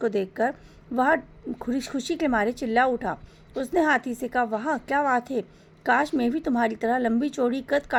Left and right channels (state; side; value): identical; both; correlation 1.00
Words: देखकर वह खुशी के मारे चिल्ला उठा। उसने हाथी से कहा, वाह क्या बात है, काश मैं भी तुम्हारी तरह लंबी चौड़ी कद